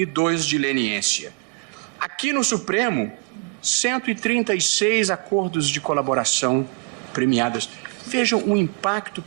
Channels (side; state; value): left; quieter; 32.7 dB